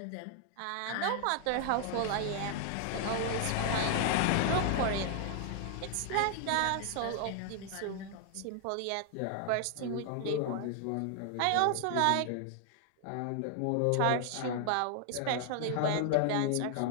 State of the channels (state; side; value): different; both; correlation 0.00